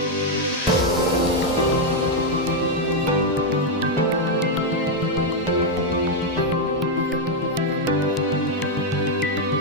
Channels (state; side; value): normal; both; correlation 0.01